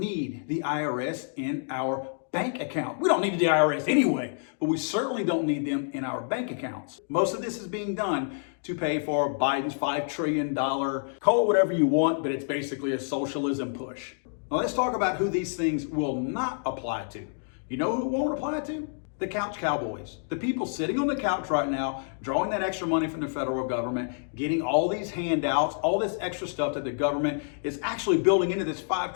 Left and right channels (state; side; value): silent; right; digital silence